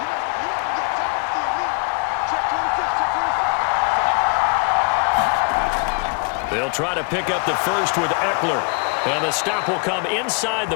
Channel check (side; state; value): right; quieter; 38.9 dB